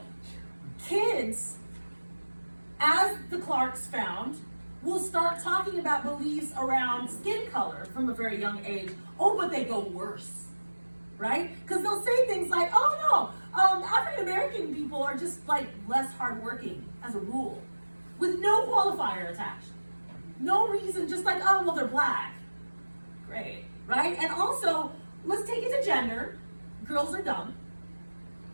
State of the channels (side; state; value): both; inverted; correlation -1.00